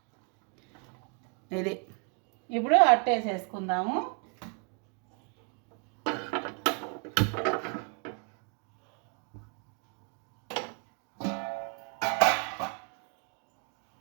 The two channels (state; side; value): quieter; left; 37.8 dB